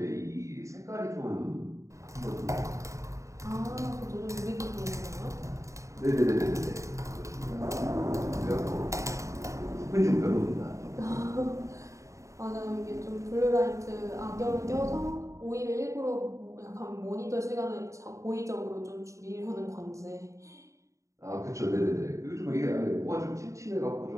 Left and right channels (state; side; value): late; left; 0.15 ms